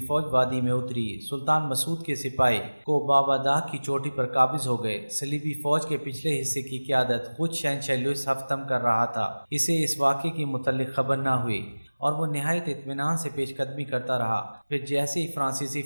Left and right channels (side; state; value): both; inverted; correlation -1.00